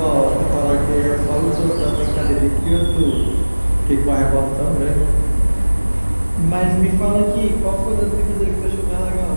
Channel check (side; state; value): both; inverted; correlation -1.00